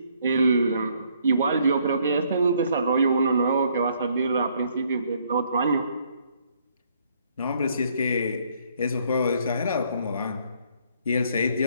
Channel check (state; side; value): inverted; both; correlation -0.67